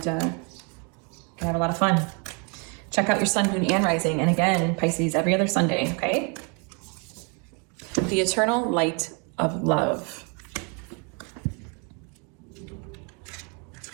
can have a lot of fun. Check out your sun, moon, and rising. And again, Pisces, every other Sunday, okay? The eternal light of love.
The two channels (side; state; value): left; quieter; 35.1 dB